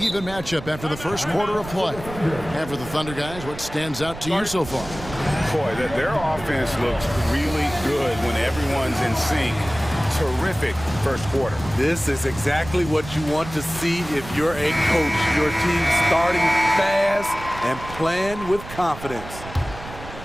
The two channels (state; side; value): noise; right; rumble, 13 dB below the sound